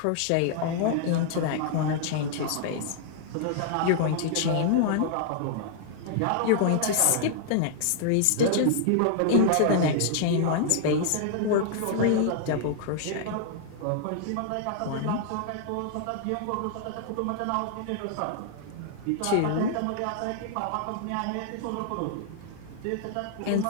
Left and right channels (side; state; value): both; different; correlation -0.01